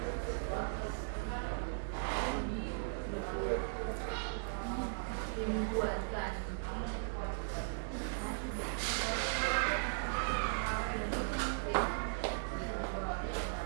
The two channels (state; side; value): silent; left; digital silence